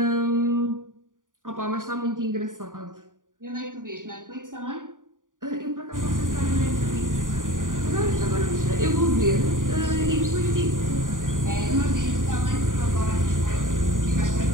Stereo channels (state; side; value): late; left; 0.88 ms